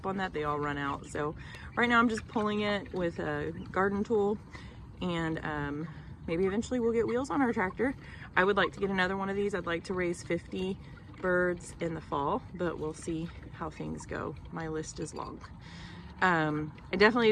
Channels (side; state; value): both; identical; correlation 1.00